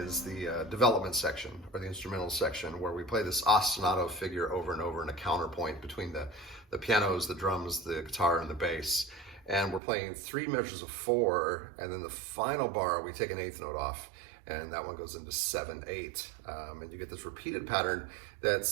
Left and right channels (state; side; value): drops out; left; at 9.8 s